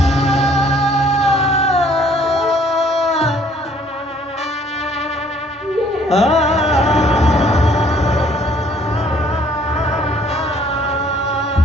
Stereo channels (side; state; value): both; normal; correlation 0.60